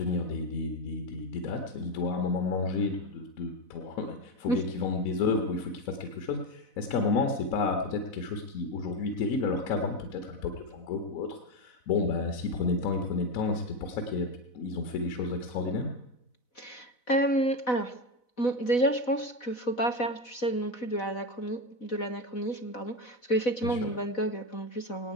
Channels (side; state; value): right; late; 4.0 ms